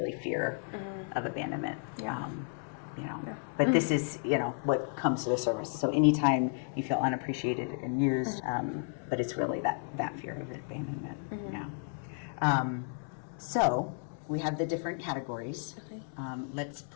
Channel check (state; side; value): silent; right; 56 dB below the other